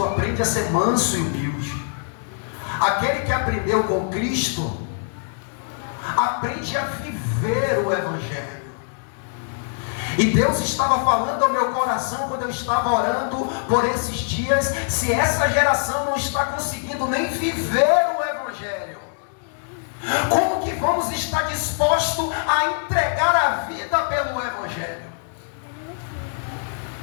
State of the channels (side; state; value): right; silent; digital silence